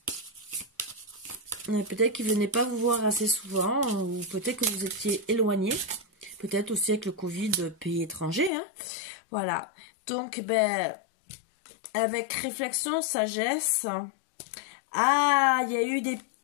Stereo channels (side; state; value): right; drops out; at 8.5 s